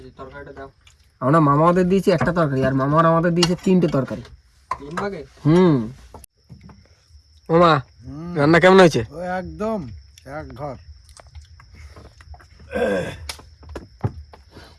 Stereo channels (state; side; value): identical; both; correlation 1.00